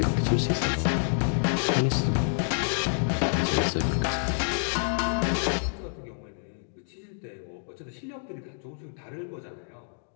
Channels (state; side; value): silent; right; digital silence